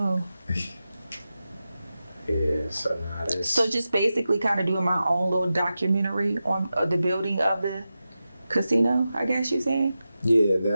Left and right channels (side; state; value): both; inverted; correlation -0.92